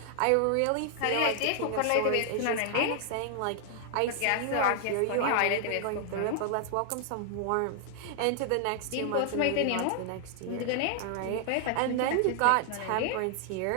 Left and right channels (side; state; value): both; different; correlation 0.00